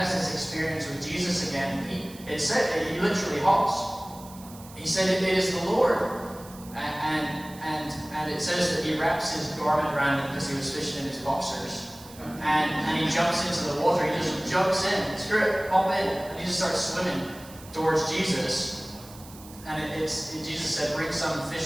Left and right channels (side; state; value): right; noise; hiss, 19 dB below the sound